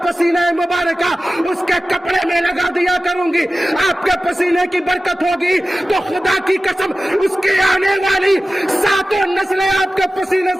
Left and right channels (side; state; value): both; normal; correlation 0.95